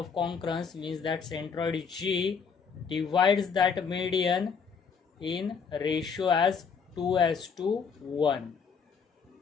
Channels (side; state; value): right; quieter; 6.0 dB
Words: concurrence means that centroid G divides that median in ratio as 2:1.